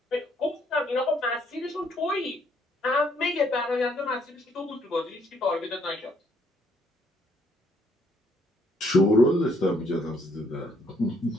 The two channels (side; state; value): both; normal; correlation 0.68